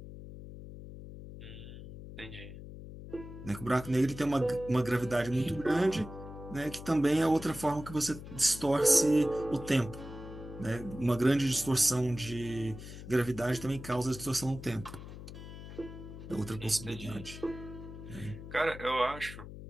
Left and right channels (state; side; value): noise; left; hum, 12 dB below the sound